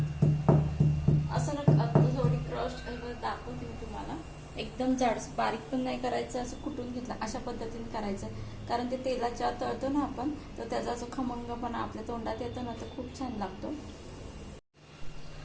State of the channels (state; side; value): identical; both; correlation 1.00